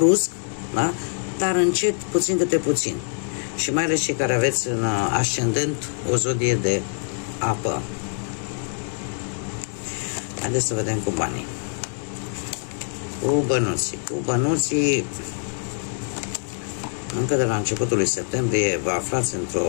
da? Dar încet, puțin câte puțin. Și mai ales cei care aveți în ascendent o zodie de apă. Haideți să vedem cu banii. Cu bănuții. încă de la începutul lui septembrie vă aflați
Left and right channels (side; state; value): right; silent; digital silence